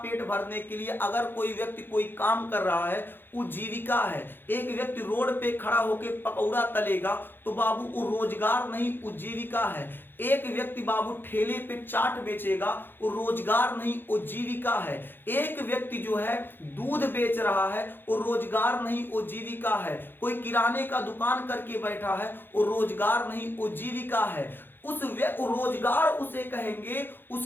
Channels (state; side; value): late; right; 0.10 ms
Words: भरने के लिए अगर कोई व्यक्ति कोई काम कर रहा है, उपजीविका है। एक व्यक्ति रोड पे खड़ा होकर पकौड़ा तलेगा तो बाबू वो रोजगार नहीं उपजीविका है। एक व्यक्ति बाबू ठेले पे चाट बेचेगा वो रोजगार नहीं उपजीविका है। एक व्यक्ति जो है दूध बेच रहा है वो रोजगार नहीं उपजीविका है। कोई किराने का दुकान करके बैठा है वो रोजगार नहीं उपजीविका है। उस रोजगार उसे कहेंगे